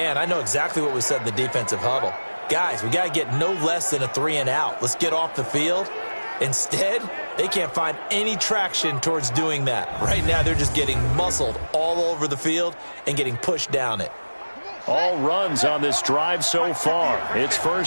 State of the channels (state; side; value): inverted; both; correlation -1.00